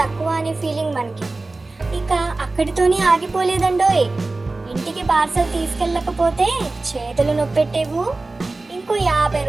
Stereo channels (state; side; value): quieter; left; 3.3 dB